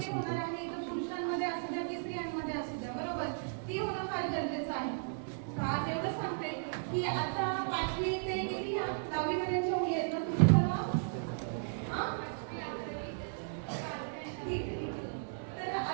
तर पुरुषांमध्ये असू द्या की स्त्रियांमध्ये असू द्या, बरोबर, ती होणं फार गरजेचं आहे. आज एवढं सांगते की आता 5वी ते किती 10वी पर्यंतच्या मुली आहेत ना तुम्ही सर्व, तर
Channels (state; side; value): silent; left; digital silence